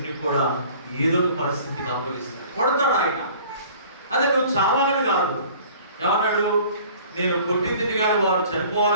కూడా ఏదో ఒక పరిస్థితికి అప్పగిస్తాడు, కొడతాడు ఆయన. అదే నువ్వు చావాలని కాదు. ఏమన్నాడు, నేను కొట్టింది కానీ వారు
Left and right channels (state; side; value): inverted; both; correlation -0.49